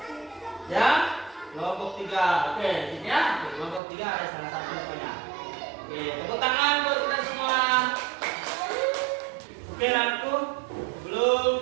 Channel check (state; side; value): drops out; left; at 3.8 s